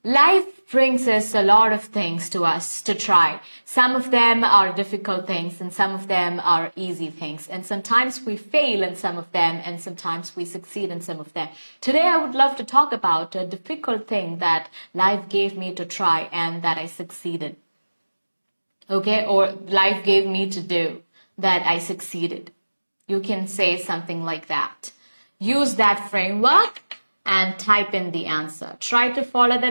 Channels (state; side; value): inverted; both; correlation -1.00